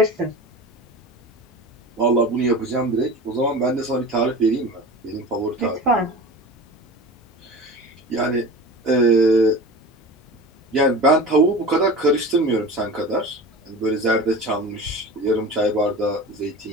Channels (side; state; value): both; normal; correlation 0.34